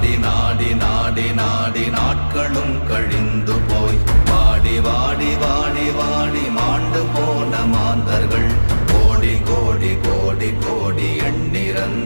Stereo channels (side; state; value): both; inverted; correlation -1.00